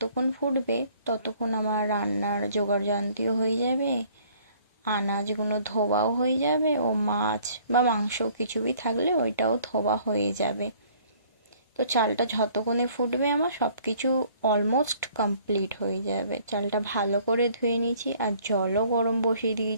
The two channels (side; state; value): both; inverted; correlation -0.58